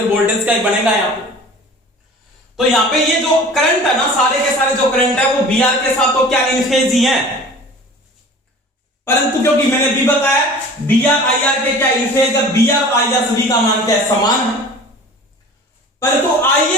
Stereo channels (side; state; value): both; normal; correlation 0.42